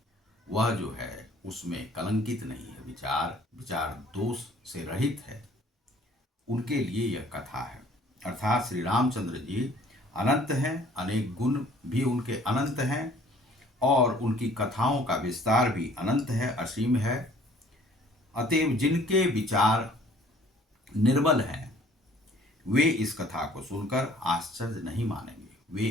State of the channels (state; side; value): normal; both; correlation 0.55